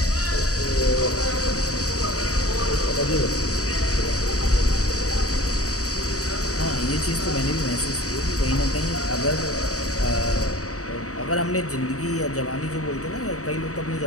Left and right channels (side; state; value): right; late; 0.66 ms